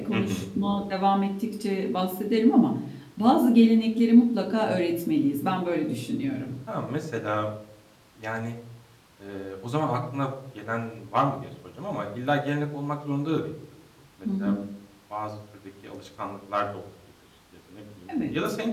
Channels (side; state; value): both; identical; correlation 1.00